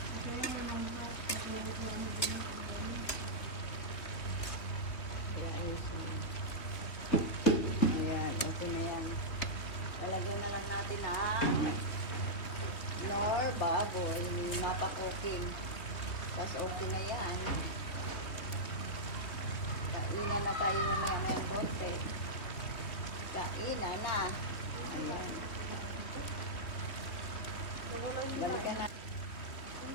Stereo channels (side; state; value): right; late; 3.4 ms